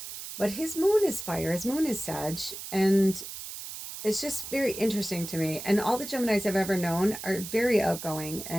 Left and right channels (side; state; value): right; noise; hiss, 10 dB below the sound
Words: but his moon is fire. His moon is Sag. And it's just very interesting to me. And all the Geminis I've ever known are very outgoing